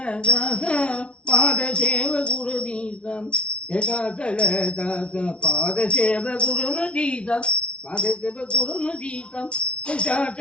దాత పాద సేవ గురుదీతం, చచల దాత పాద సేవ గురుదీతం, పాద సేవ గురుదీతం,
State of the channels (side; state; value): right; late; 0.060 ms